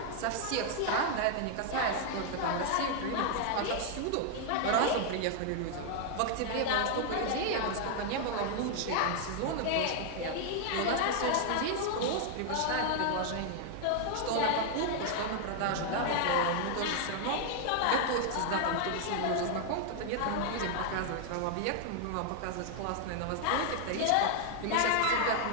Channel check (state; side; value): different; both; correlation 0.00